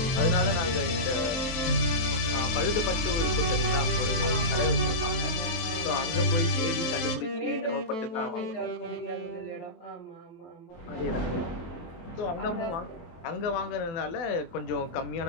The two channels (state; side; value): late; right; 24 ms